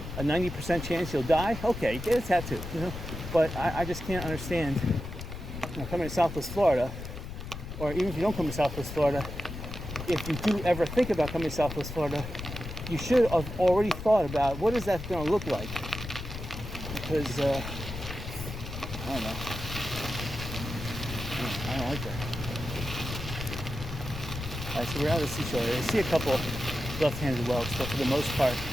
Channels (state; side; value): noise; left; rumble, 8 dB below the sound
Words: a 90% chance you'll die. Okay, get a tattoo. But I just can't understand. Coming to Southwest Florida, or even if you don't come to Southwest Florida, if you do ever think about coming to Southwest Florida, you should have already thought about what is that going to look like. Because, I don't know. I don't like that. All right, so we're out of the seashore area. I see a couple left-handed whelks, but for the most part,